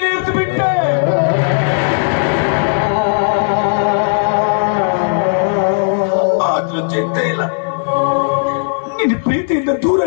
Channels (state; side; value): silent; right; digital silence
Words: ಇರಿದು ಬಿಟ್ಟೆ. ಆದ್ರೂ ಚಿಂತೆ ಇಲ್ಲ, ನಿನ್ನ ಪ್ರೀತಿಯಿಂದ ದೂರ